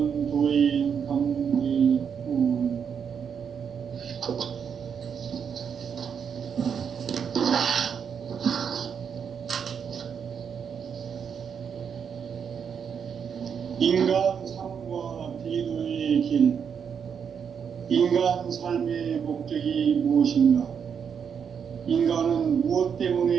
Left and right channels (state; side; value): quieter; left; 7.2 dB